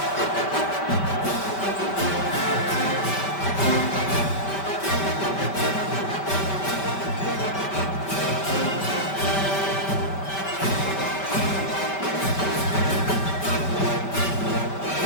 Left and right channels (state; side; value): late; right; 5.1 ms